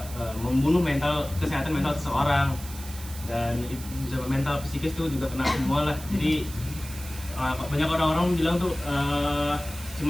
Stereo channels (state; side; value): noise; right; hiss, 14 dB below the sound